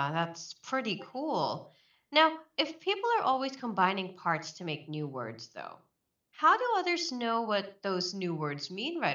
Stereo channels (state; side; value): identical; both; correlation 1.00